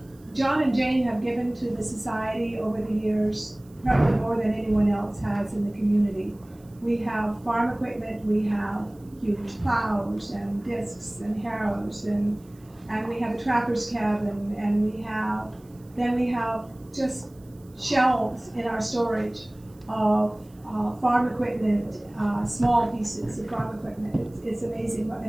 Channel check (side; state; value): right; noise; hiss, 30 dB below the sound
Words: John and Jane have given to the society over the years probably more than anyone else has in the community. We have farm equipment, we have huge plows and discs and harrows, and we have a trapper's cabin, and we have just shelves in our storage of farm equipment, small pieces of farm equipment. It's amazing what the